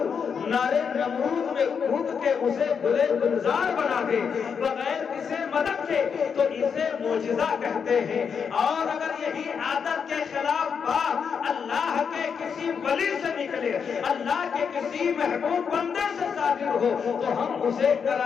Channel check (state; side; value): quieter; right; 6.5 dB